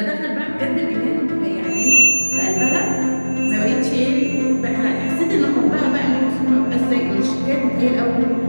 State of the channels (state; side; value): inverted; both; correlation -1.00